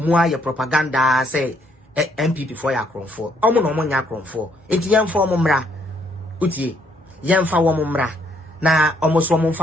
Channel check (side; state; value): both; normal; correlation 0.69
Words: your propaganda say NPP for ya cron for. Omo no mon ya cron for. Enti yam for mumra. Uti yam fa womumra. Na almost one